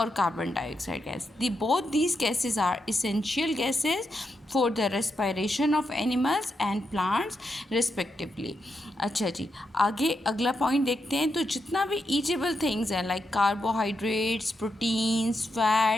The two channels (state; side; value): normal; both; correlation 0.84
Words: carbon dioxide gas. Both these gases are essential gases for the respiration of animals and plants respectively. अच्छा जी, आगे अगला पॉइंट देखते हैं. तो जितना भी ईटेबल थिंग्स हैं like carbohydrates, proteins,